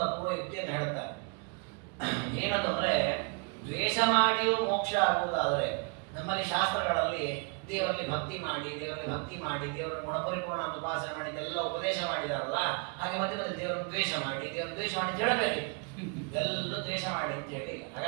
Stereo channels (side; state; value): left; quieter; 35.5 dB